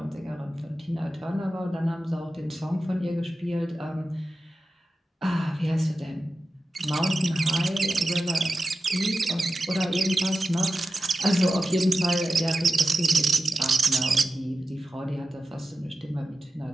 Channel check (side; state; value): both; normal; correlation 0.93